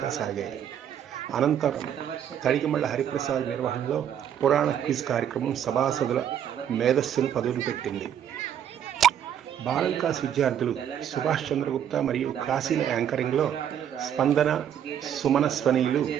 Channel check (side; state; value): left; quieter; 9.5 dB